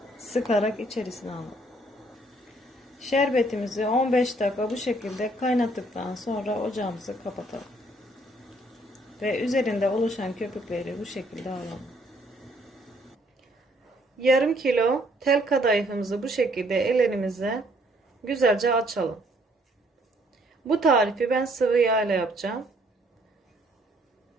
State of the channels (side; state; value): both; normal; correlation 0.65